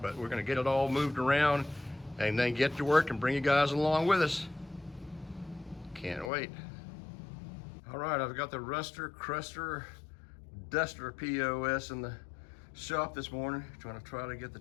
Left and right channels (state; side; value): drops out; right; at 6.3 s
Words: but we're going to get it all moved around and then get to work and bring you guys along with us. Can't wait. All right, I've got the Cruster, Duster POS in the shop this morning, trying to get the